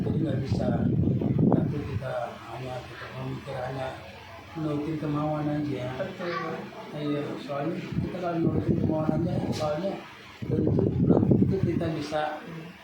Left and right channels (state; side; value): identical; both; correlation 1.00